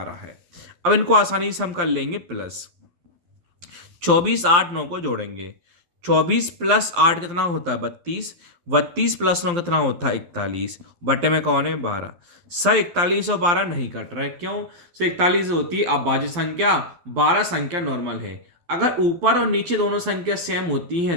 है। अब इनको आसानी से हम कर लेंगे प्लस। 24 8 9 को जोड़ेंगे, 24 प्लस 8 कितना होता है 32, 32 प्लस 9 कितना होता है 41, बटे में कौन है 12। सर 41 और 12 नहीं कट रहा है, क्यों सर, 41 होती है अभाज्य संख्या, 12 संख्या नॉर्मल है। अगर ऊपर और नीचे दोनों संख्या सेम होती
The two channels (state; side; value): late; left; 12 ms